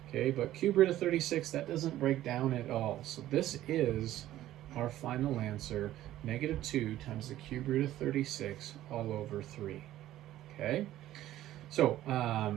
Okay, but cube root of 36, that doesn't break down at all. So this is our final answer, negative 2 times the cube root of 36 all over 3. Okay, so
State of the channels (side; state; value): left; quieter; 13.8 dB